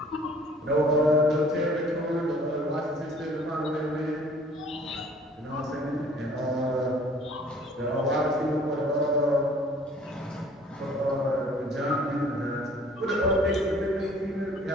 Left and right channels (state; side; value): normal; both; correlation 0.53